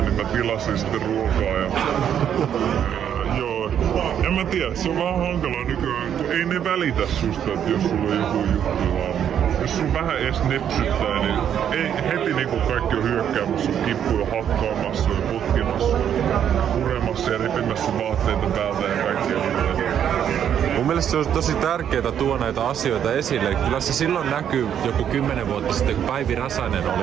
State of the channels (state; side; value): quieter; left; 9.2 dB